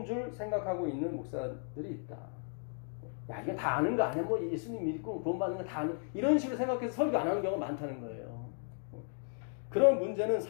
줄 생각하고 있는 목사들이 있다. 야, 이게 다 아는 거 아니야? 뭐 예수님 믿고 구원받는 거 다 아는, 이런 식으로 생각해서 설교 안 하는 경우가 많다는 거예요. 그런 문제는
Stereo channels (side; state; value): right; silent; 54 dB below the other